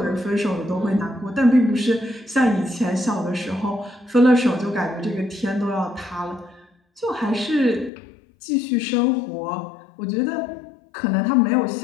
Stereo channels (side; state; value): right; drops out; at 7.9 s